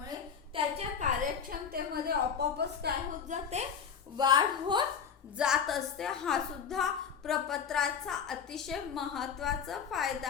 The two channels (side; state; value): right; quieter; 7.0 dB